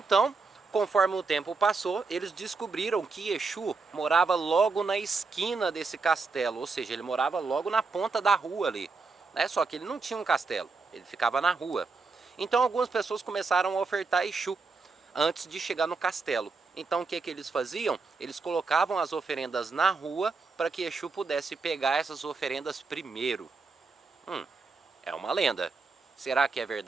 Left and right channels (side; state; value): left; quieter; 4.3 dB